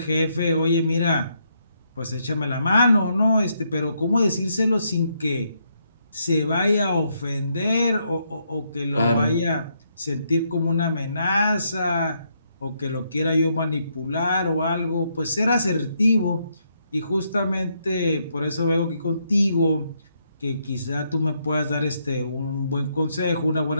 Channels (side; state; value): both; inverted; correlation -0.76